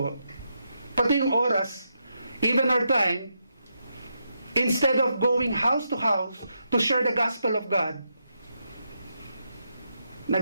Pati yung oras, even our time, instead of going house to house to share the gospel of God,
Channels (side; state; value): both; inverted; correlation -0.83